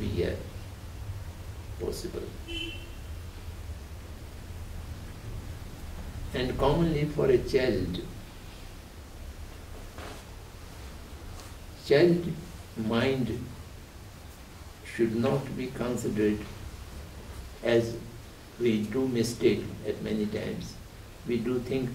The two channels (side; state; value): both; identical; correlation 1.00